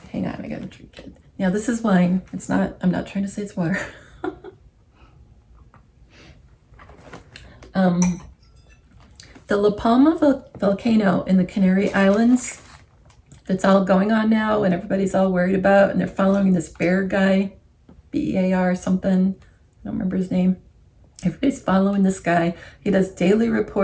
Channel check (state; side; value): identical; both; correlation 1.00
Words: Hang on, I gotta drink it. Now, this is wine. It's not, I'm not trying to say it's water. The La Palma volcano in the Canary Islands that's all going on now and everybody's all worried about, and they're following this bear guy, B-E-A-R something, I don't remember his name. Everybody's following this guy. He does daily